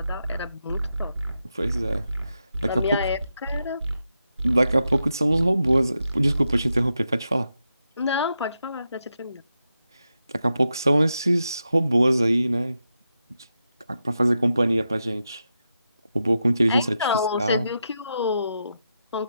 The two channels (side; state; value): both; inverted; correlation -0.87